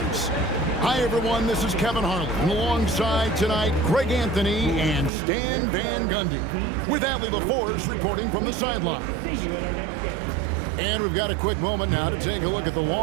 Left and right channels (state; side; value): drops out; left; at 5.1 s